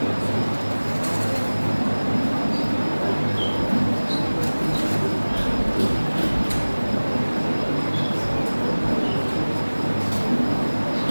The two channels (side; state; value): both; inverted; correlation -1.00